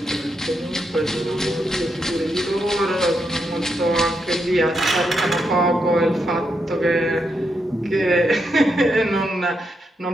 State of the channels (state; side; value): normal; both; correlation 0.82